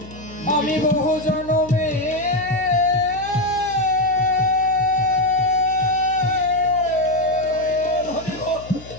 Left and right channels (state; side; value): noise; left; hum, 17 dB below the sound